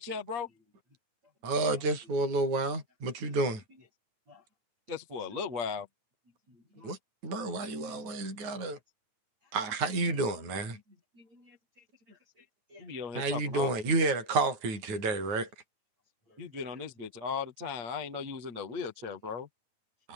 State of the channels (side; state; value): left; late; 9.4 ms